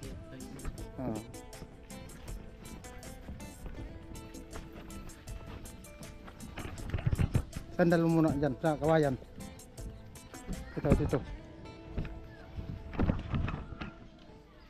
Sandal mo muna dyan sa kawayan. Ito.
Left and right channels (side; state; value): both; identical; correlation 1.00